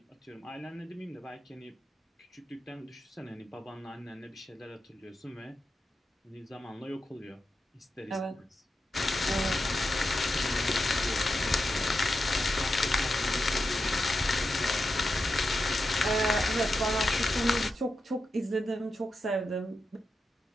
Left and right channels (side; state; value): both; normal; correlation 0.88